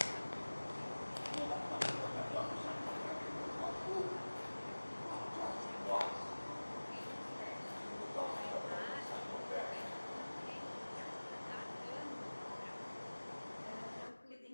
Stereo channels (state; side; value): inverted; both; correlation -1.00